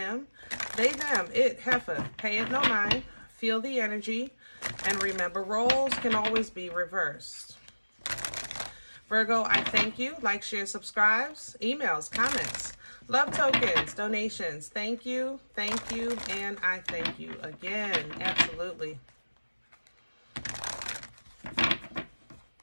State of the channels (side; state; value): both; inverted; correlation -1.00